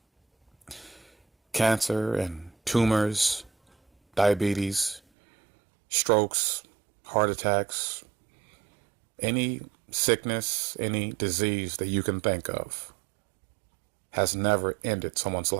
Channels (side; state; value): left; drops out; at 5.0 s